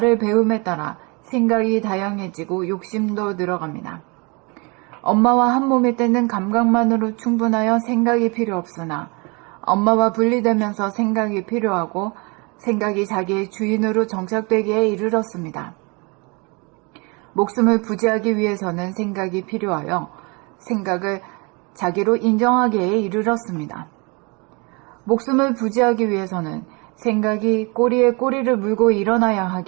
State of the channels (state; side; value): quieter; left; 30.2 dB